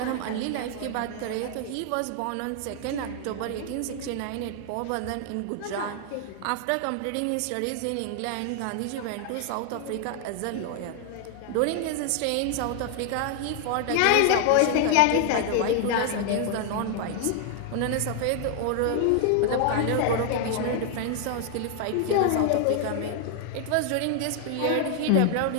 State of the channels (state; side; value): different; both; correlation 0.00